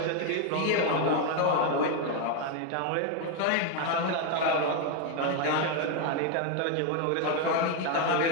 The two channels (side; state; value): both; different; correlation 0.01